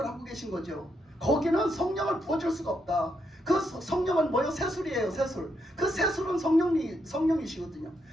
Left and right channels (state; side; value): normal; both; correlation 0.79